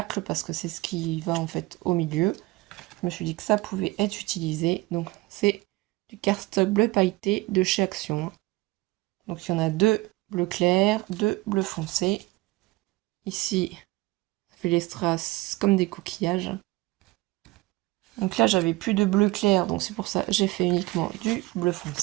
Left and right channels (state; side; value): quieter; left; 21.0 dB